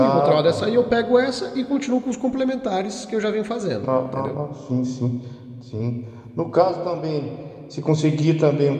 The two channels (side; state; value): both; identical; correlation 1.00